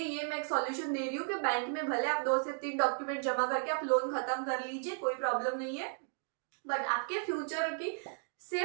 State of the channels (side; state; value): left; silent; 55 dB below the other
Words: ये मैं एक सॉल्यूशन दे रही हूँ कि बैंक में भले आप 2 से 3 डॉक्यूमेंट जमा करके आप लोन खत्म कर लीजिए, कोई प्रॉब्लम नहीं है, बट आपके फ्यूचर की